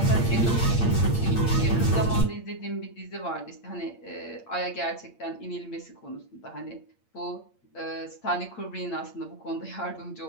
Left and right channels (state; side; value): late; right; 8.7 ms